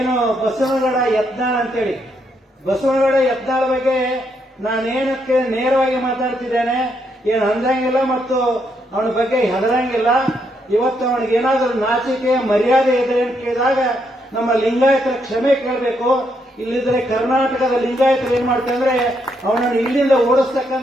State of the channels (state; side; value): normal; both; correlation 0.77